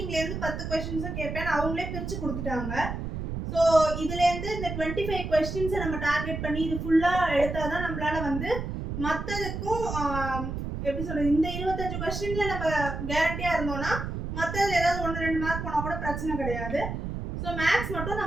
இருந்து 10 क्वेश्चंसும் கேட்பேன் அவங்களே பிரிச்சு கொடுத்துட்டாங்க. ஸோ இதுலேருந்து இந்த 25 கொஸ்டின்ஸை நம்ம டார்கெட் பண்ணி இது ஃபுல்லாக எடுத்தால் தான் நம்மளால வந்து மற்றதுக்கும் எப்படி சொல்கிறது, இந்த 25 கொஸ்டினில் நம்ம கேரண்டியாக இருந்தோம்னா மற்றதுல ஏதாவது 1-2 மார்க் போனால் கூட பிரச்சனை கிடையாது. ஸோ மேக்ஸ் மட்டும்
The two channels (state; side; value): noise; right; rumble, 5 dB below the sound